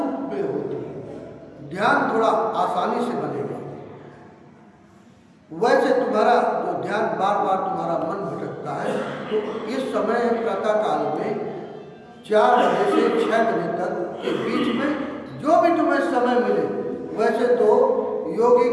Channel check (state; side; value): identical; both; correlation 1.00